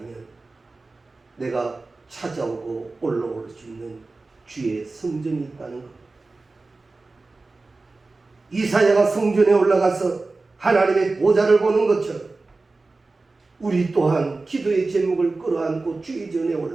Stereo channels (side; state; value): left; quieter; 3.5 dB